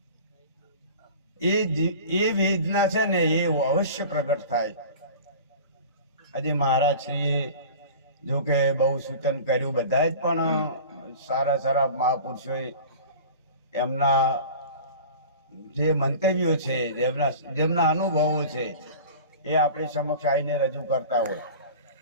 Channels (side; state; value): both; inverted; correlation -0.38